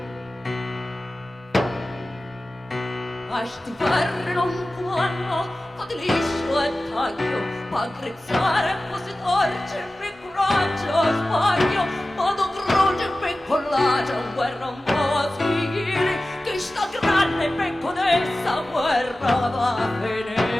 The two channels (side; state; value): both; normal; correlation 0.96